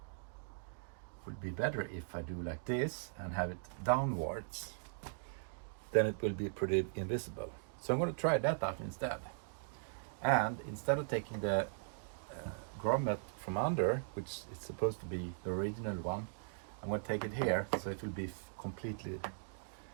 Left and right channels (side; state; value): left; silent; digital silence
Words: would be better if I do like this and have it downwards. Then it will be pretty invisible. So I'm going to try that out instead. And instead of taking the grommet from under, which is supposed to be the original one, I'm going to take it here, so it will be completely